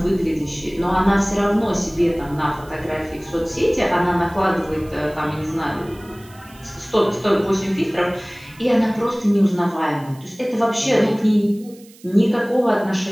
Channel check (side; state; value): right; noise; hiss, 25 dB below the sound